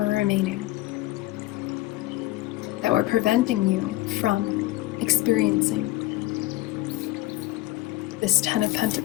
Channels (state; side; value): quieter; right; 17.7 dB